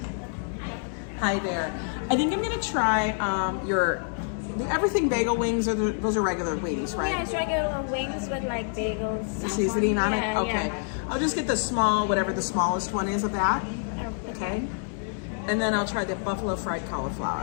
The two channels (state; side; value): silent; right; 60 dB below the other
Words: Hi there. I think I'm gonna try the everything bagel wings. Those are regular wings, right? Yeah, it's regular wings with like bagels. The seasoning on it? Okay. Yeah. I'll just get the small, whatever the smallest one is of that. Okay. And then I'll try the buffalo fried